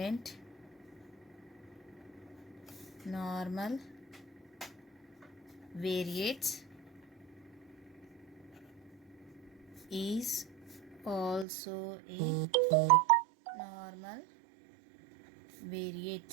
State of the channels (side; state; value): left; drops out; at 11.5 s